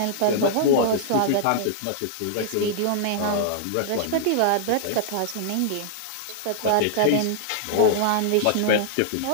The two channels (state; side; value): different; both; correlation -0.01